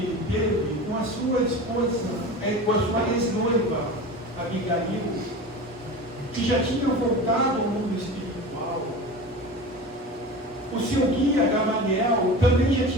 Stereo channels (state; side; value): normal; both; correlation 0.32